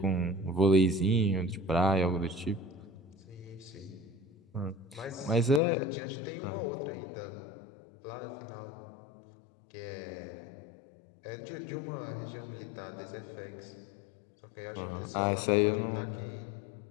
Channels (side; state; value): right; drops out; at 5.6 s